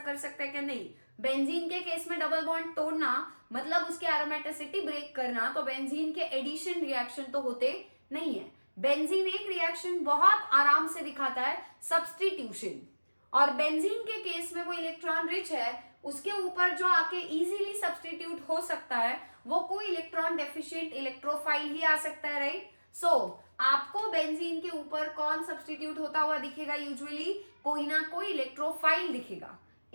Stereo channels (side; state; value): both; inverted; correlation -1.00